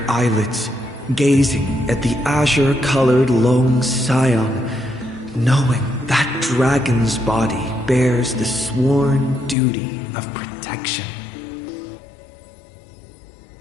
eyelids, gazing at the azure-colored lone scion, knowing that dragon's body bears the sworn duty of protection.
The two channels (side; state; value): right; drops out; at 9.6 s